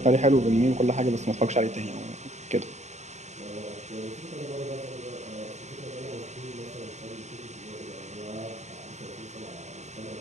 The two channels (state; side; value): late; left; 0.33 ms